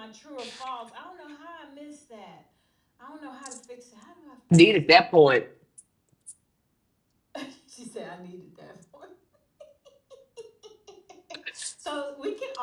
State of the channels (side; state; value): both; identical; correlation 1.00